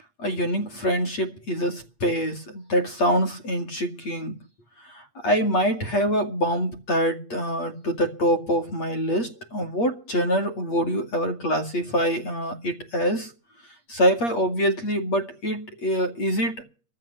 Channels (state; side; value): late; right; 8.5 ms